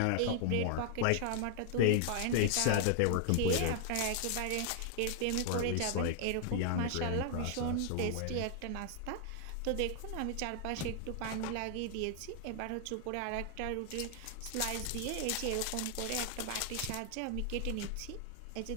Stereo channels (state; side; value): different; both; correlation 0.00